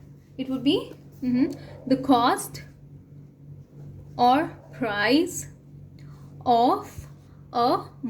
It would be the cost or price of a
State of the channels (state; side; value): identical; both; correlation 1.00